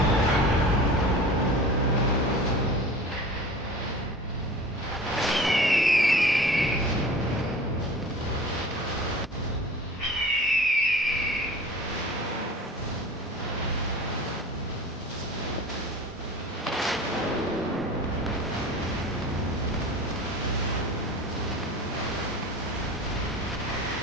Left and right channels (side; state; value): both; normal; correlation 0.39